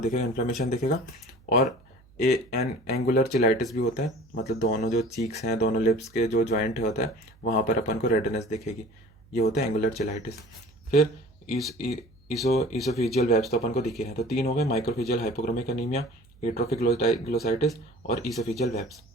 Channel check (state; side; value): noise; right; hum, 28 dB below the sound